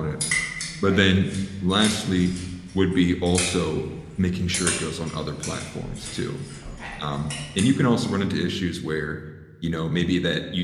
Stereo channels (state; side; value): identical; both; correlation 1.00